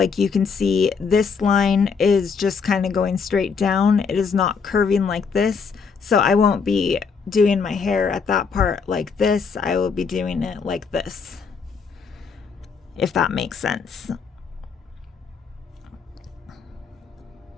you can see, this line is just kind of going straight down. It is not curving like this. So I won't be doing my hair at that part like this. I will be doing it like this, if that makes sense.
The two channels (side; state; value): right; quieter; 5.6 dB